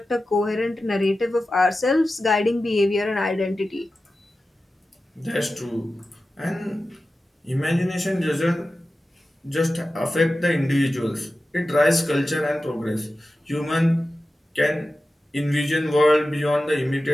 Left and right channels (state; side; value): normal; both; correlation 0.94